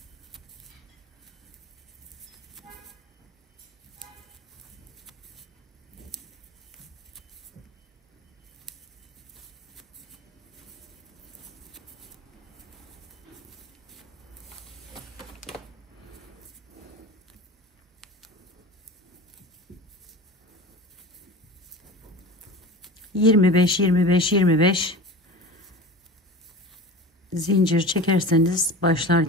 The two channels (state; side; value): normal; both; correlation 0.34